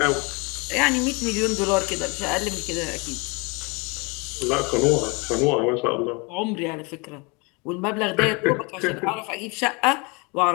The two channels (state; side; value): quieter; right; 29.1 dB